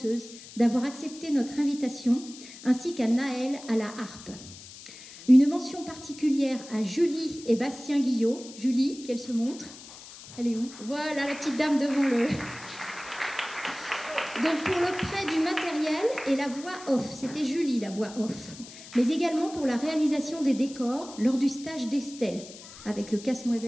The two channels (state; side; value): noise; left; hiss, 16 dB below the sound